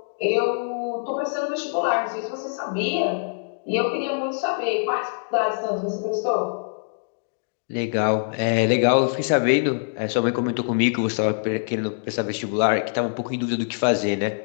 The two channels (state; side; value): silent; right; digital silence